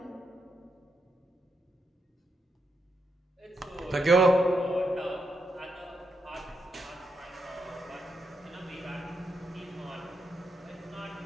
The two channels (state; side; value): normal; both; correlation 0.82